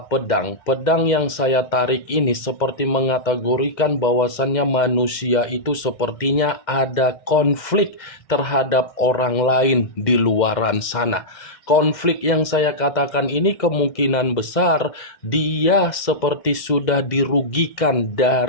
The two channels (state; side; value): late; right; 2.1 ms